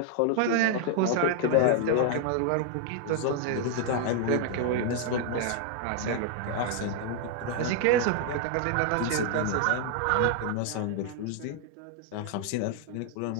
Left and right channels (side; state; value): both; different; correlation 0.00